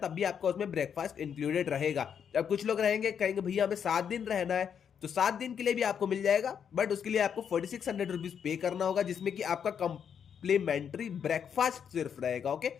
तब भी आपका उसमें ब्रेकफास्ट इंक्लूडेड रहेगा। अब कुछ लोग रहेंगे, कहेंगे भैया हमें 7 दिन रहना है, तो 7 दिन के लिए भी आपको मिल जाएगा, बट उसके लिए आपको 4600 रुपीज पे करना होगा, जिसमें कि आपका कम्प्लीमेंट्री ब्रेकफास्ट सिर्फ रहेगा। ओके,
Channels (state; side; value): quieter; right; 7.8 dB